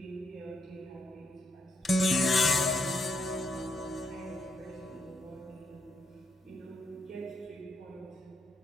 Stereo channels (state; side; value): normal; both; correlation 0.77